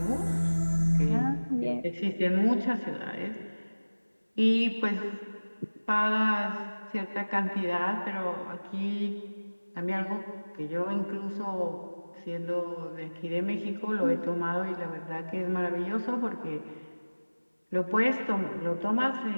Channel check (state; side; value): inverted; both; correlation -1.00